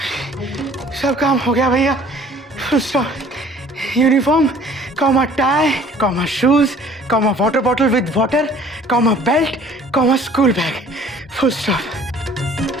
सब काम हो गया भैया। Full stop. Uniform comma tie comma shoes comma water bottle with water comma belt comma school bag full stop.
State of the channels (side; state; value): both; normal; correlation 0.53